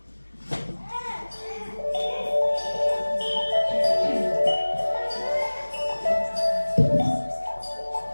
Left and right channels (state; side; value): inverted; both; correlation -1.00